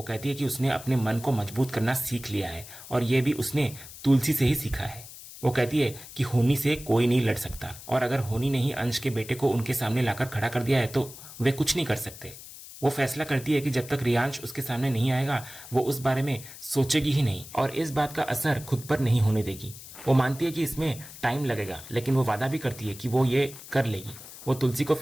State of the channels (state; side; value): noise; left; hiss, 15 dB below the sound